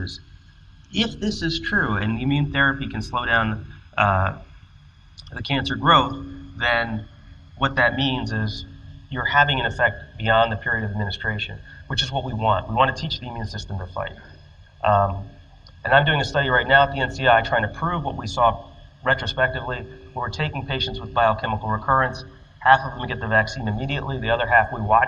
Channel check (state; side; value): identical; both; correlation 1.00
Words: if this is true and the immune therapy can slow down the cancer growth, then what that means is you're having an effect beyond the period of administration, which is what we want. We want to teach the immune system to fight. And I'm doing a study right now at the NCI trying to prove what we saw retrospectively, where we're taking patients with biochemical recurrence. Half of them get the vaccine immediately. The other half we